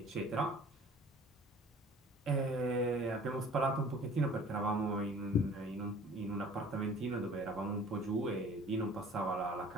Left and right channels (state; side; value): normal; both; correlation 0.48